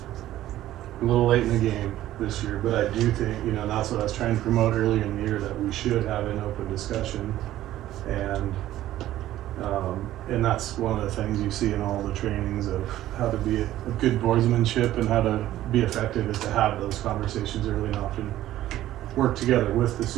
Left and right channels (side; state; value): left; quieter; 13.9 dB